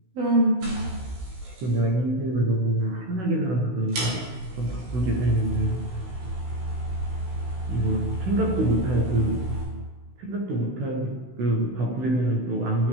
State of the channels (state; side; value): late; left; 16 ms